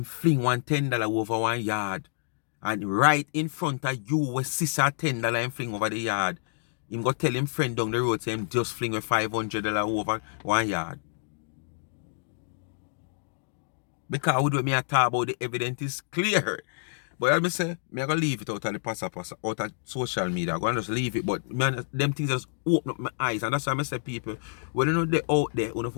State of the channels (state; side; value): silent; right; digital silence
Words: fling one $10 over one yard. And right in front of you with sister $10 and fling over the yard. Him go tell him friend down the road, say him just fling with $500 over one yard. Because we do me a talk about the evidence is clear. But I say, I'm going to leave it out of the passa out of social media. I'm going to just leave it. But man, them things just open up my eyes. And that's why I say people, when you know they're out there, you have